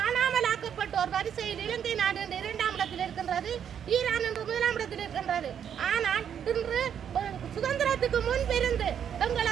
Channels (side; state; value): left; quieter; 8.6 dB